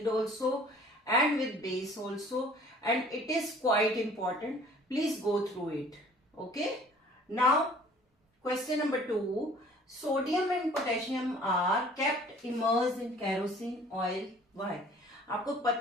also and with base also, and it is quite important. Please go through it. Okay, now question number 2, sodium and potassium are kept immersed in kerosene oil. Why? आपको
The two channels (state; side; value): normal; both; correlation 0.51